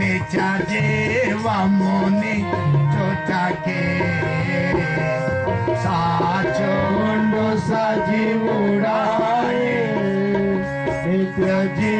నిత్య జీవముని చుటకే సాచుండు సజీవుడాయే నిత్య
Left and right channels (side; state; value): both; identical; correlation 1.00